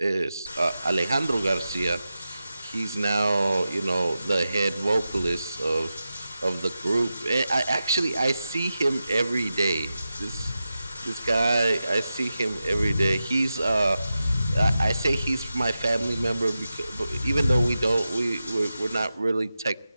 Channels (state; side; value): inverted; both; correlation -0.91